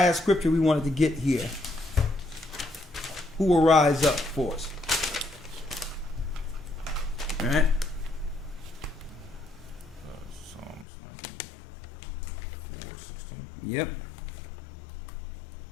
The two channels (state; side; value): drops out; right; at 10.9 s